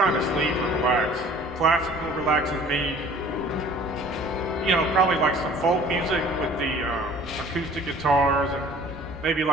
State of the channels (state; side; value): normal; both; correlation 0.50